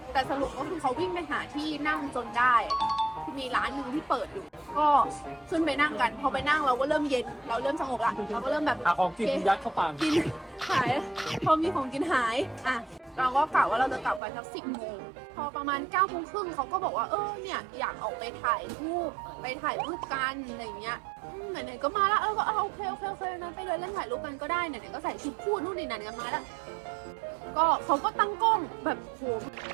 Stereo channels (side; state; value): left; drops out; at 14.2 s